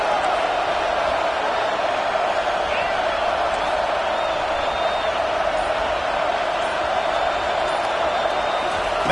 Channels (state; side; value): identical; both; correlation 1.00